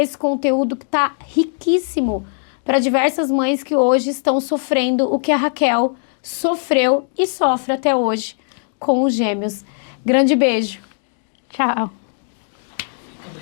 conteúdo que está riquíssimo para diversas mães que hoje estão sofrendo o que a Raquel sofreu e sofre até hoje com os gêmeos. Grande beijo. Tchau. Fica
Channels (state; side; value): silent; right; digital silence